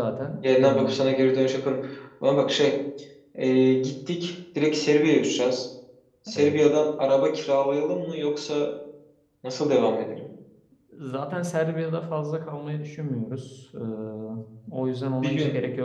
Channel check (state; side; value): identical; both; correlation 1.00